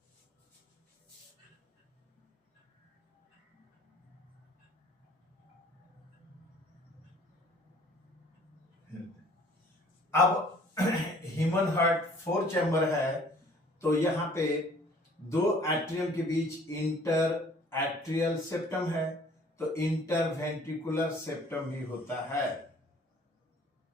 अब ह्यूमन हार्ट 4 चैम्बर है, तो यहां पे दो एट्रियम के बीच इंटर एट्रियल सेप्टम है, तो इंटर वेंट्रिकुलर सेप्टम ही होता है।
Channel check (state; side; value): normal; both; correlation 0.55